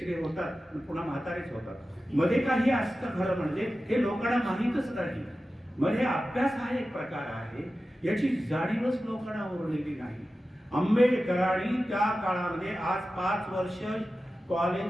होतात, पुन्हा म्हातारेच होतात. मध्ये काही असतं खरं म्हणजे हे लोकांना माहीतच नाही. मध्ये अभ्यास हा एक प्रकार आहे, याची जाणीवच लोकांना उरलेली नाही. आंबेडकरांनी त्या काळामध्ये आज 5 वर्ष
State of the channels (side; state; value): both; normal; correlation 0.94